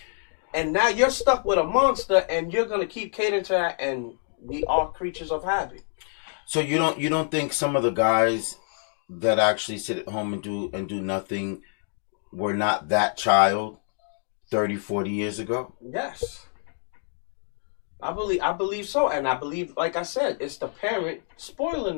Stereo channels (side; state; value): right; silent; 58 dB below the other